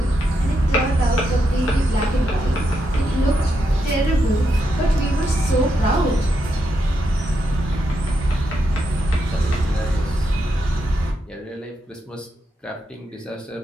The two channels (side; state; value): both; normal; correlation 0.83